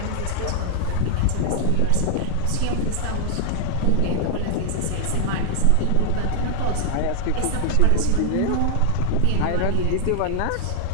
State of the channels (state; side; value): different; both; correlation 0.00